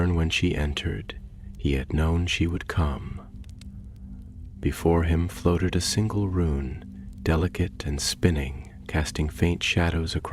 when she entered. He had known she would come. Before him floated a single rune, delicate and spinning, casting faint shadows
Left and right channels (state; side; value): identical; both; correlation 1.00